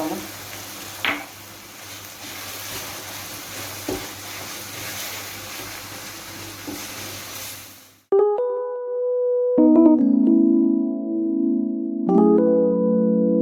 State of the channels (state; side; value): identical; both; correlation 1.00